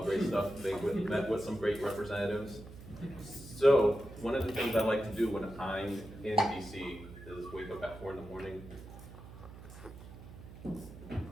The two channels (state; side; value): noise; right; hum, 15 dB below the sound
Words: stuff. They met with some great representatives. So one of the things I like to do when I'm in DC is wake up at 4 in the morning.